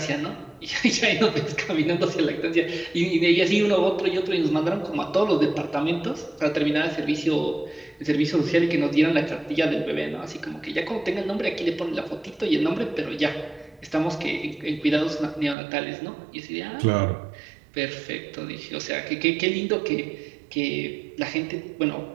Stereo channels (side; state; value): left; drops out; at 15.6 s